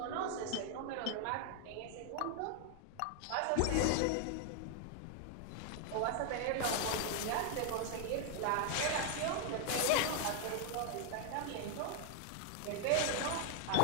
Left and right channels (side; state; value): both; different; correlation 0.00